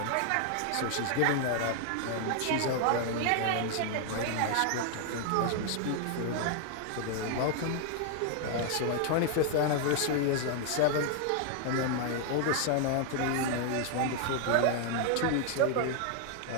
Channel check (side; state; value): both; different; correlation 0.00